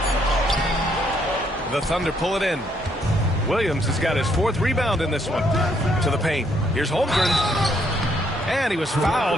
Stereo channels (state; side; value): normal; both; correlation 0.71